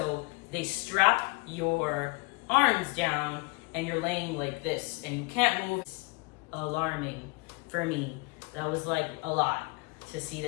they strap your arms down and you're laying like this and you can't move. It's alarming for me. That was like a lot to see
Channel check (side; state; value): right; quieter; 29.1 dB